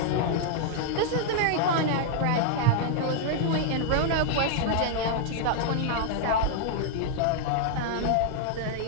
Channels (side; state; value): both; different; correlation -0.01